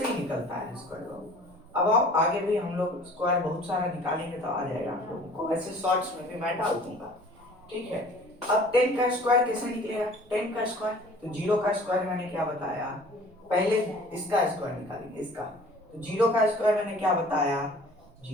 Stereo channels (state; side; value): noise; right; rumble, 26 dB below the sound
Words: ही निकलता है स्क्वायर। अब आओ आगे भी हम लोग स्क्वायर बहुत सारा निकालेंगे तो आ जाएगा आप लोगों को, ऐसे शॉर्ट्स में भी मैं डाल दूंगा, ठीक है। अब 10 का स्क्वायर कैसे निकलेगा, 10 का स्क्वायर, तो 0 का स्क्वायर मैंने क्या बताया, पहले इसका स्क्वायर निकालेंगे, इसका, तो 0 का स्क्वायर मैंने क्या बताया,